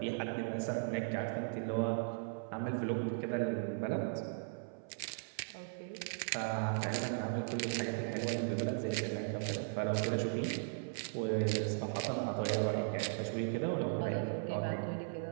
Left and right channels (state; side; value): silent; left; 53 dB below the other